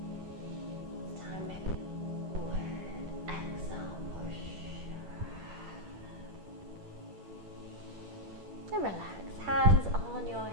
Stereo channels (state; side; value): late; left; 10 ms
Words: This time maybe forward. Exhale, push. And relax, hands on your